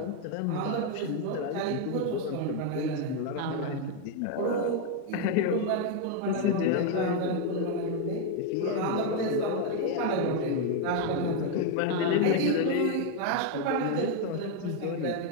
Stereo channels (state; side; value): different; both; correlation 0.01